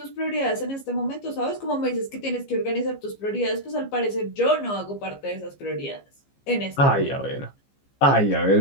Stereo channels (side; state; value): right; late; 15 ms